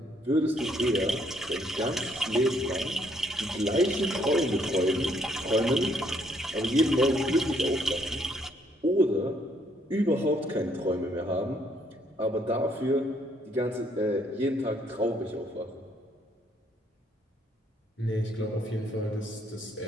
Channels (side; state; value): both; normal; correlation 0.68